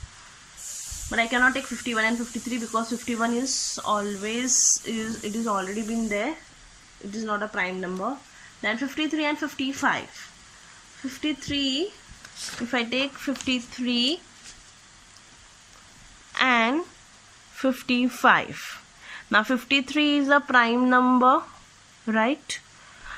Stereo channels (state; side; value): identical; both; correlation 1.00